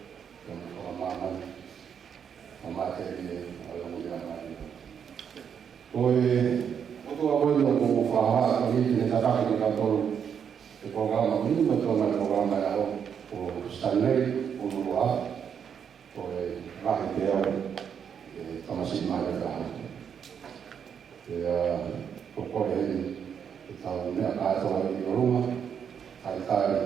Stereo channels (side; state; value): left; quieter; 7.7 dB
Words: Pemahaman materi dalam ujian ini. Untuk apa yang kamu faham ini kita tak di kantor program ini betul program yang Stanley ulua, rakyat dia masih mereka. Ya, pokoknya kita ni ada di rumah,